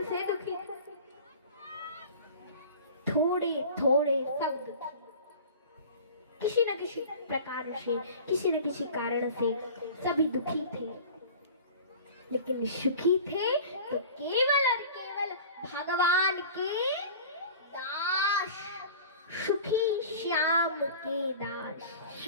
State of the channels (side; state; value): both; inverted; correlation -0.40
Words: से दुखी था। थोड़े थोड़े सब दुखी, किसी न किसी प्रकार से, किसी न किसी कारण से सभी दुखी थे, लेकिन सुखी थे तो केवल और केवल भगवान के दास, सुखी श्याम के दास,